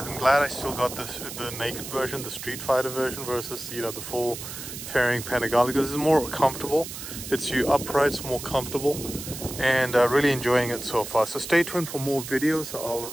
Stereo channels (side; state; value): right; noise; hiss, 9 dB below the sound